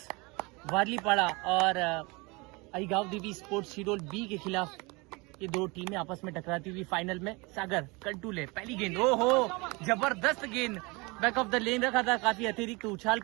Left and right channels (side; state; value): left; quieter; 26.4 dB